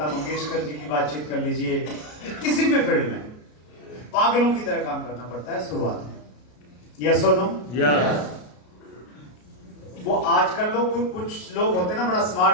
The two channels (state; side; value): late; right; 33 ms